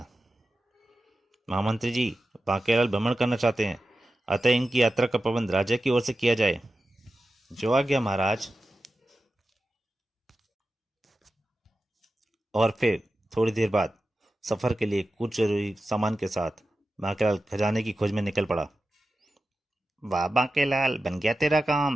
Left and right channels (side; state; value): both; normal; correlation 0.93